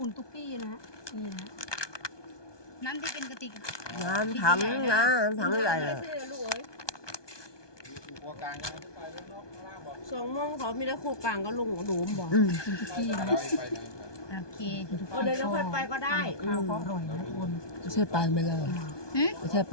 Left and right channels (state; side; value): late; right; 1.2 ms